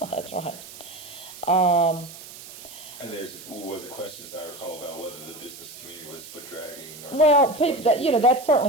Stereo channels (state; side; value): noise; right; hiss, 15 dB below the sound